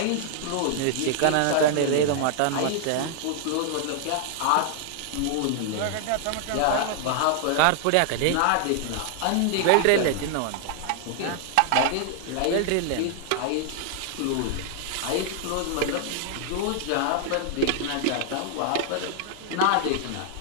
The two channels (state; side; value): different; both; correlation 0.00